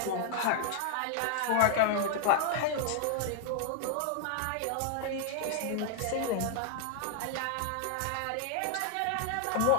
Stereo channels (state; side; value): different; both; correlation 0.00